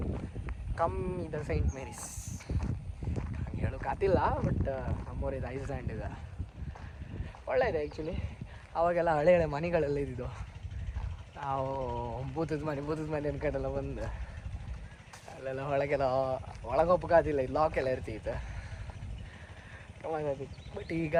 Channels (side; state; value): both; identical; correlation 1.00